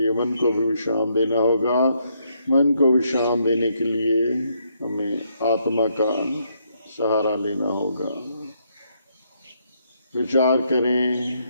मन को भी विश्राम देना होगा। मन को विश्राम देने के लिए हमें आत्मा का सहारा लेना होगा। विचार करें,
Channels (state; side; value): inverted; both; correlation -0.75